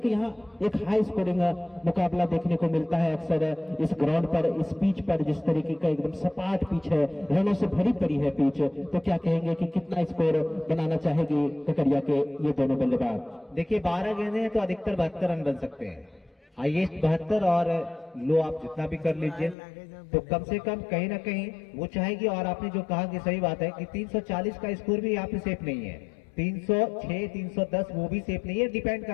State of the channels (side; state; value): right; drops out; at 19.6 s